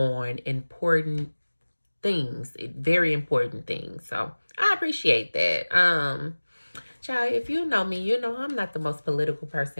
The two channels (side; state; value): both; inverted; correlation -1.00